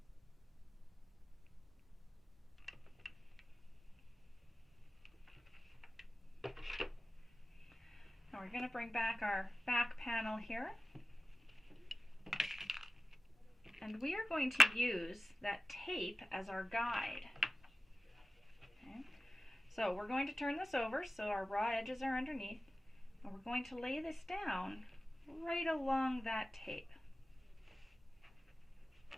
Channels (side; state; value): both; normal; correlation 0.95